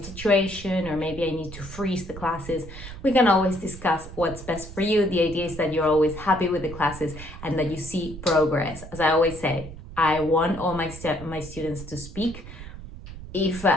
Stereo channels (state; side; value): noise; right; rumble, 13 dB below the sound